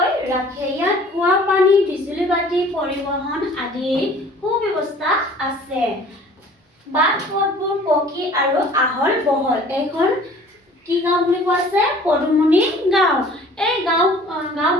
ৰাখে। ইয়াত খোৱা পানী, বিজুলী বাতি, পৰিবহণ আদি সুব্যৱস্থা আছে। বাট পথবোৰ পকী আৰু আহল বহল। এইখন কি গাঁও বুলি কোৱা আছে? পদুমনি গাঁও। এই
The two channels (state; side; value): normal; both; correlation 0.50